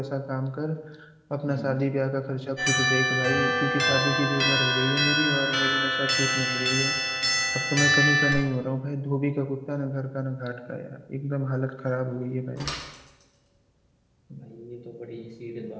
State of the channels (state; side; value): identical; both; correlation 1.00